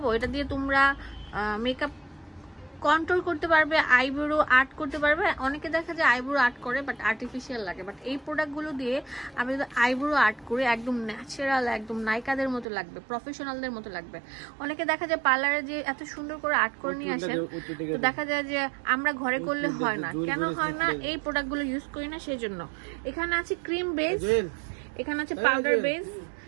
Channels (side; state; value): left; drops out; at 12.7 s